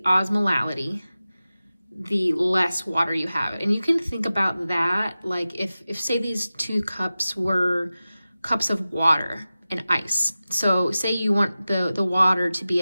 osmolality, the less water you have. And you can think about that like if say these 2 cups were cups of water and ice. So say you want the water to be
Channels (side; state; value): both; inverted; correlation -0.95